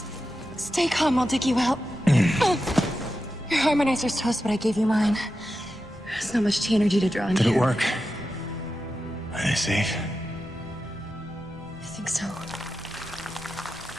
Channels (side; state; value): both; normal; correlation 0.90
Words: stay calm, I'll dig you out. Your harmonizer's toast, but I gave you mine. There's not much energy to draw on. Did it work? Are they safe? I think so.